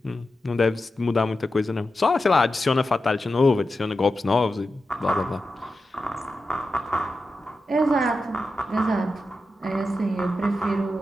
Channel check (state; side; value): normal; both; correlation 0.90